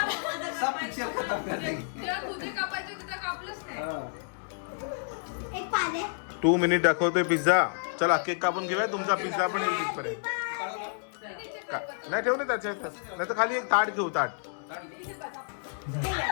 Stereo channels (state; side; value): silent; right; digital silence